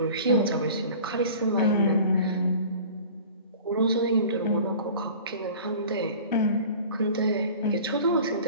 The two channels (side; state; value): both; inverted; correlation -0.43